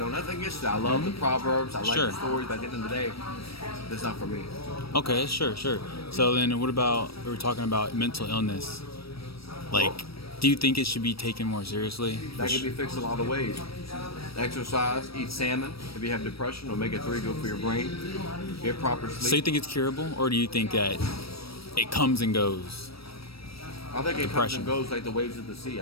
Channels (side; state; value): right; late; 0.76 ms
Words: nothing against it. I love the Proverbs. I like the stories, but at the end of the day, that's not for me. Okay, sure. So then what about, we were talking about mental illness. Do you think it should be taken more seriously? That can be fixed a lot of ways. Exercise, eat salmon. If you have depression, omega-3 good for your brain. Get proper sleep. So you think it's curable, or do you think that it comes and goes? I think it comes and goes like the waves of the sea.